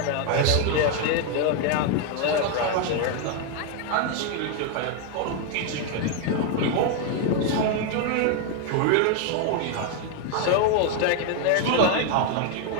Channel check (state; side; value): different; both; correlation 0.01